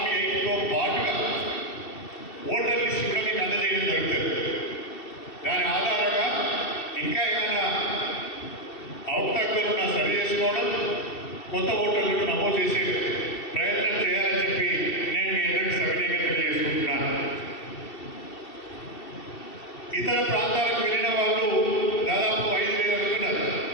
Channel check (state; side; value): late; right; 2.7 ms